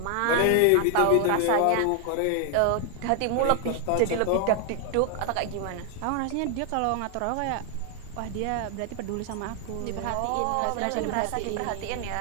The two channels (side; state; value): both; different; correlation 0.00